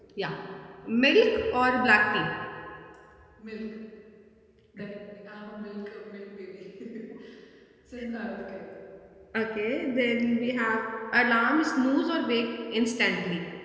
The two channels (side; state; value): both; identical; correlation 1.00